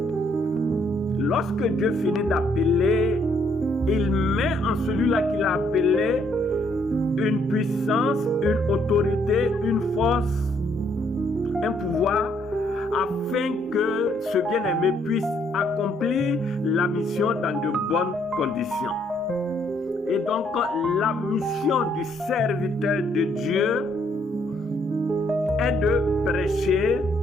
Lorsque Dieu finit d'appeler, il met en celui-là qu'il a appelé une puissance, une autorité, une force, un pouvoir, afin que ce bien-aimé puisse accomplir la mission dans de bonnes conditions. Et donc, la mission du serviteur de Dieu est de prêcher,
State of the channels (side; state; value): both; normal; correlation 0.69